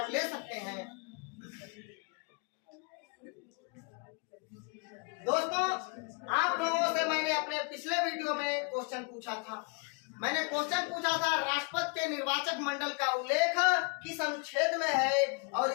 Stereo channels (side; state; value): right; quieter; 33.1 dB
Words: ले सकते हैं। दोस्तों आप लोगों से मैंने अपने पिछले वीडियो में क्वेश्चन पूछा था। मैंने क्वेश्चन पूछा था राष्ट्रपति के निर्वाचक मंडल का उल्लेख किस अनुच्छेद में है और